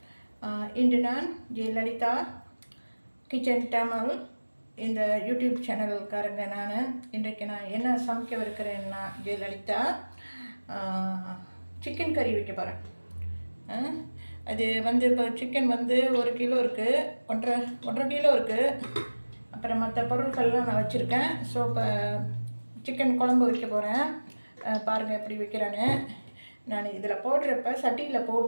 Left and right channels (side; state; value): both; inverted; correlation -1.00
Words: இன்று நான் ஜெயலலிதா கிச்சன் தமிழ் இந்த யூடியூப் சேனலுக்காரங்க. இன்றைக்கு நான் என்ன சமைக்கவிருக்கிறேன்னா, ஜெயலலிதா சிக்கன் கறி வைக்க போகிறேன். அது இப்போ சிக்கன் 1 கிலோ இருக்குது, 1.5 கிலோ இருக்குது. அப்புறம் மற்ற பொருட்கள்லாம் நான் வச்சுருக்கேன். ஸோ இப்போ சிக்கன் குழம்பு வைக்க போகிறேன். பாருங்கள் எப்படி வைக்கிறேன்னு. நான் இதில் போடுறப்ப சட்டியில்